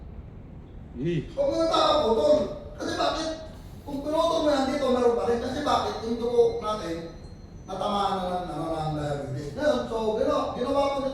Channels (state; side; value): identical; both; correlation 1.00